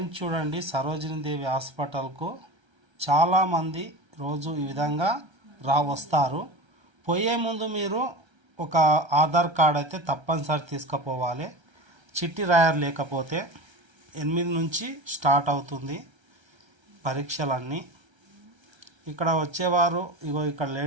చూడండి. సరోజినీ దేవి హాస్పిటల్కు చాలామంది రోజు ఈ విధంగా వస్తారు. పోయే ముందు మీరు ఒక ఆధార్ కార్డ్ అయితే తప్పనిసరి తీసుకుపోవాలి. చిట్టి రాయర్ లేకపోతే 8 నుంచి స్టార్ట్ అవుతుంది పరీక్షలన్నీ. ఇక్కడ వచ్చేవారు ఇగో ఇక్కడ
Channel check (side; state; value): left; late; 1.3 ms